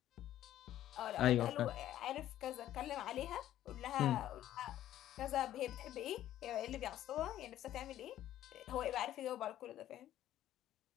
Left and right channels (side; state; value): right; quieter; 12.6 dB